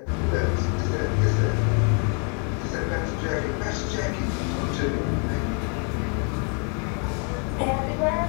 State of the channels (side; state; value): right; quieter; 39.9 dB